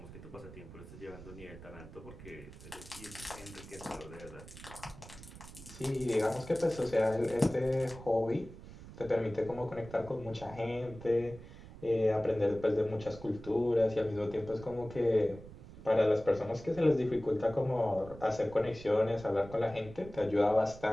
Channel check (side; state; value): right; noise; rumble, 16 dB below the sound